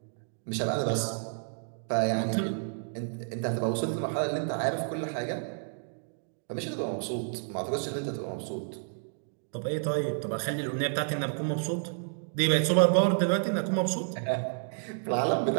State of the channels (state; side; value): silent; left; digital silence